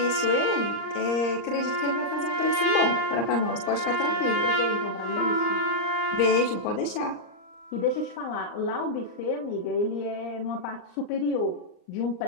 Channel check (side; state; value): right; late; 39 ms